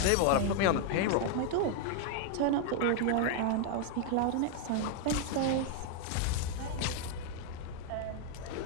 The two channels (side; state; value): both; different; correlation 0.00